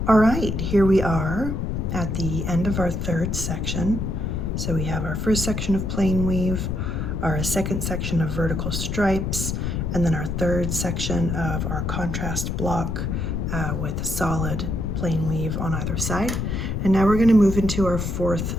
All right, here we are at the end of our third section. So we have our first section of plain weave, our second section of vertical stripes, and then our third section of our contrast block with solid plain weave on either side. And now we're going to move into our fourth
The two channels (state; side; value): noise; left; rumble, 2 dB below the sound